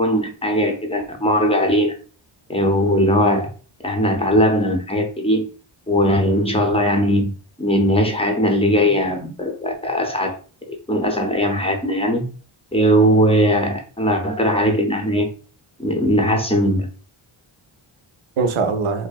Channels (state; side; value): normal; both; correlation 0.25